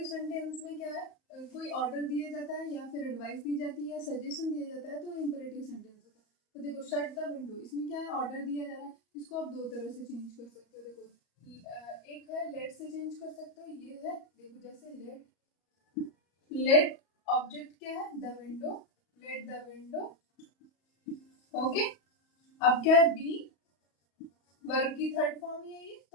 सेंटेंस में क्या है? कोई ऑर्डर दिया जाता है या फिर एडवाइस दी जाती है या सजेशन दिया जाता है, तो इम्परेटिव सेंटेंस होता है। तो देखो शट द विंडो, इसमें क्या है? ऑर्डर दिया जा रहा है, इसको आप दो तरह से चेंज कर सकते हो। देखो एक है लेट से चेंज कर सकते हो, ये है देखो जैसे लेट ऑब्जेक्ट क्या है? The window, let the window. Okay, अब क्या है? बी वर्ब की थर्ड फॉर्म ही है ये,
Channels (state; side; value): late; right; 34 ms